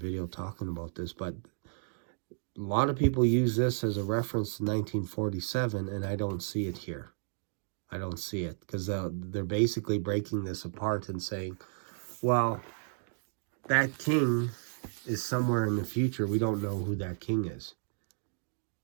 talking about this, but a lot of people use this as a reference to 1947, and I don't see it here. I don't see it, because they're basically breaking this apart and saying, well, that king is somewhere in the future. We don't know who that king is.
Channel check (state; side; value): silent; left; digital silence